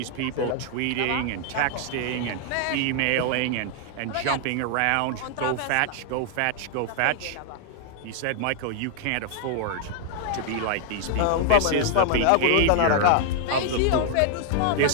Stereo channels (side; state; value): both; different; correlation 0.00